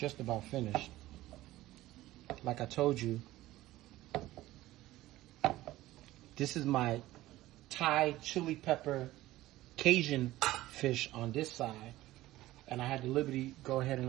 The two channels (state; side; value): quieter; left; 16.4 dB